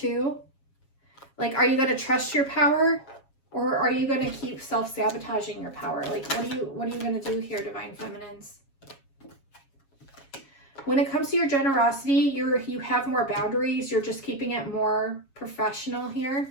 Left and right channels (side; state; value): right; late; 7.3 ms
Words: Like, are you going to trust your power, or are you going to keep self-sabotaging your power? Like, what are you going to do here, Divine Feminines? When it comes to your generosity, you have more boundaries. You're just keeping it more professional